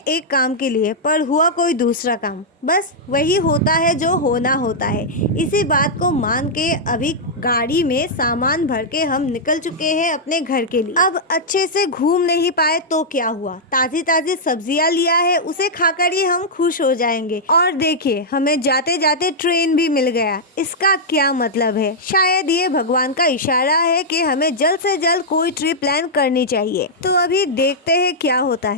काम के लिए, पर हुआ कोई दूसरा काम। बस वही होता है जो होना होता है। इसी बात को मान के अभी गाड़ी में सामान भर के हम निकल चुके हैं अपने घर के लिए। अब अच्छे से घूम नहीं पाए तो क्या हुआ, ताजी ताजी सब्जियां लिया है, उसे खाकर ही हम खुश हो जाएंगे। और देखिए हमें जाते जाते ट्रेन भी मिल गया। इसका क्या मतलब है? शायद ये भगवान का इशारा है कि हमें जल्द से जल्द कोई ट्रिप प्लान करनी चाहिए। तो अभी देखते हैं क्या होता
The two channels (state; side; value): normal; both; correlation -0.08